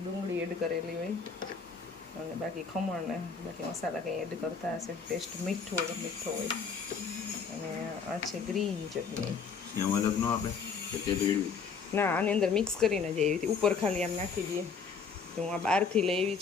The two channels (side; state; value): right; quieter; 5.5 dB